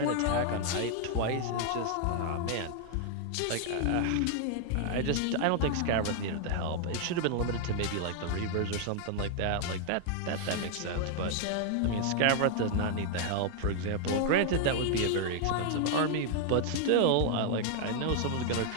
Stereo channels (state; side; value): different; both; correlation 0.00